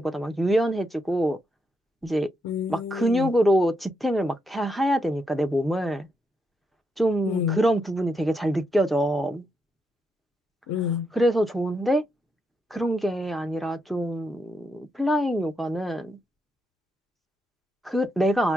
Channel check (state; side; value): normal; both; correlation 0.81